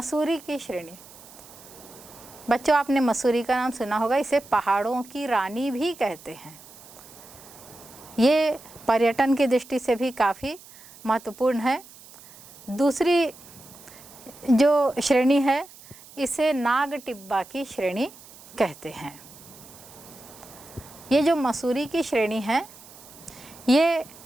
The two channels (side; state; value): right; noise; hiss, 20 dB below the sound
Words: की श्रेणी। बच्चों, आपने मसूरी का नाम सुना होगा, इसे पहाड़ों की रानी भी कहते हैं। ये पर्यटन की दृष्टि से भी काफ़ी महत्वपूर्ण है। दूसरी जो श्रेणी है इसे नाग टिब्बा की श्रेणी कहते हैं। ये जो मसूरी की श्रेणी है ये